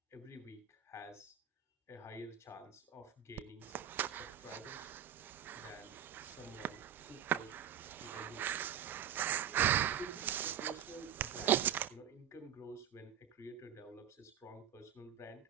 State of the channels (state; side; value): quieter; left; 9.5 dB